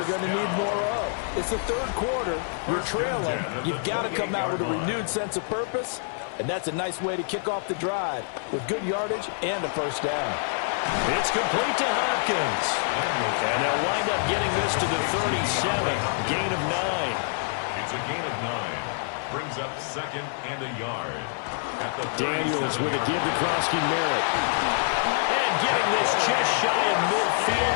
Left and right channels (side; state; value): right; silent; 57 dB below the other